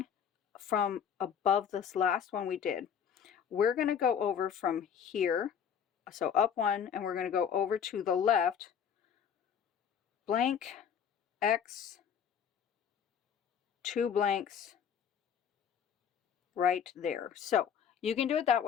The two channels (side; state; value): right; quieter; 7.8 dB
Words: from above this last one we did, we're going to go over from here, so up 1, and we're going to go over to the left, blank, X, 2 blanks, right there. So you can do it that